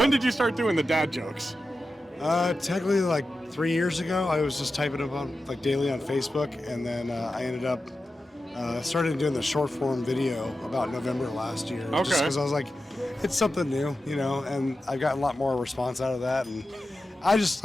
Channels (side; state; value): both; normal; correlation 0.92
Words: did you start doing the dad jokes? Technically like 3 years ago. I was just typing them on like daily on Facebook, and then I ended up started doing the short form video about November last year. Okay. Just because I was like, it's something new, you know, and I've gotten a lot more response out of that, and I just,